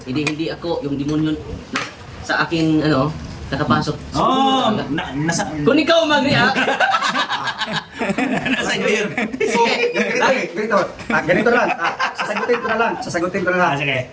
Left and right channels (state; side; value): identical; both; correlation 1.00